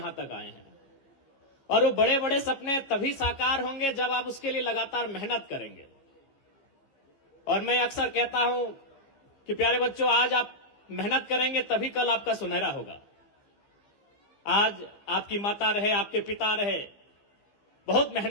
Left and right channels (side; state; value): right; late; 15 ms